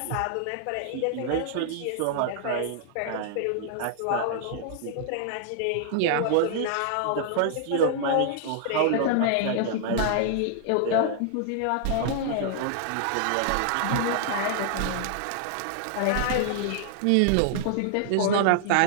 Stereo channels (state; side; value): different; both; correlation -0.01